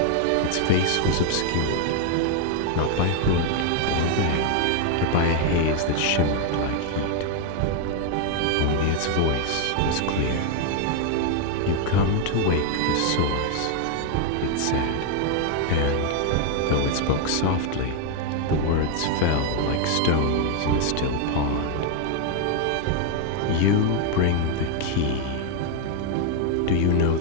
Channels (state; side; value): different; both; correlation 0.00